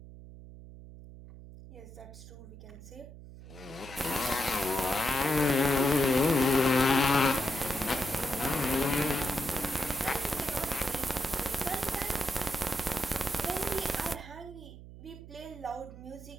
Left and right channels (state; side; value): noise; right; hum, 16 dB below the sound